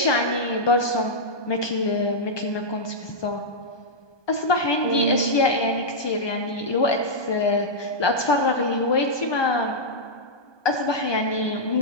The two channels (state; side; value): late; right; 1.2 ms